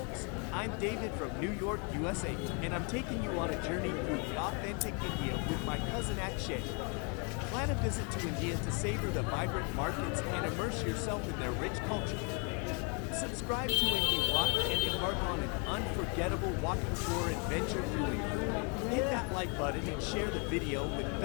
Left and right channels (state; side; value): quieter; right; 35.5 dB